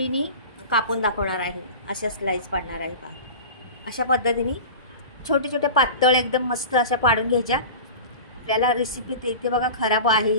कापून दाखवणार आहे. अशा स्लाईस पाडणार आहे. पहा अशा पद्धतीने छोटे छोटे पातळ एकदम मस्त अशा पाडून घ्यायच्या. आपल्याला रेसिपी ते इथे बघा खराब आहे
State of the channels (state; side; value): inverted; both; correlation -0.34